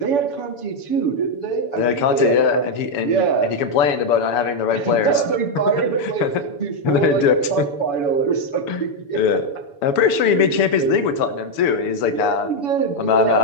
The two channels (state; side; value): late; right; 7.0 ms